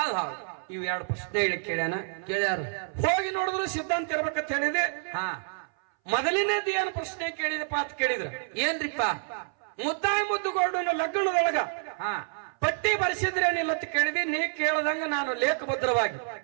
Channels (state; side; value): silent; left; 59 dB below the other